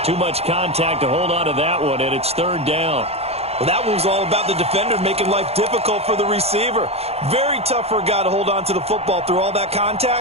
Too much contact to hold on to that one, and it's 3rd down. Well, that one was all about the defender making life difficult for the receiver. Very tough for a guy to hold on to the football through all that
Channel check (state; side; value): late; left; 0.29 ms